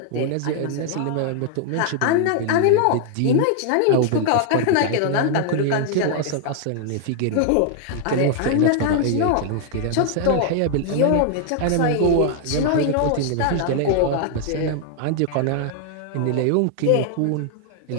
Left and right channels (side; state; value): both; different; correlation 0.00